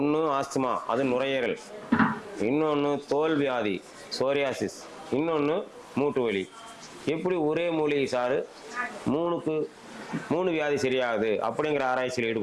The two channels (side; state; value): both; identical; correlation 1.00